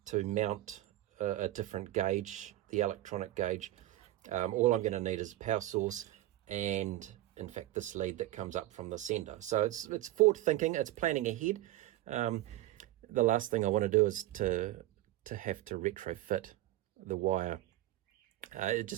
to mount a different gauge, the electronic gauge, all I'm going to need is a power source and in fact this lead that comes up from the sender. So it's forward thinking, it's planning ahead. The last thing I want to do is to have to retrofit the wire. It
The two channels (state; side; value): quieter; left; 15.7 dB